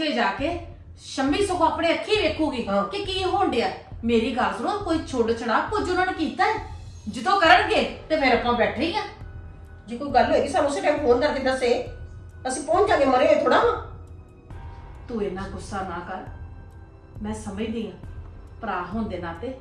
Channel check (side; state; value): both; identical; correlation 1.00